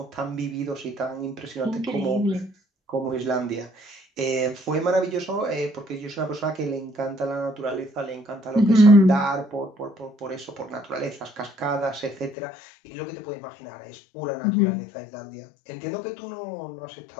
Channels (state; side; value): drops out; right; at 12.4 s